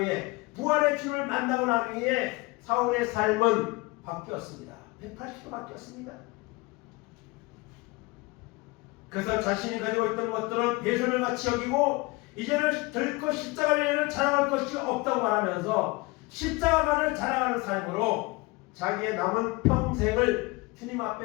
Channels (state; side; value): quieter; right; 24.0 dB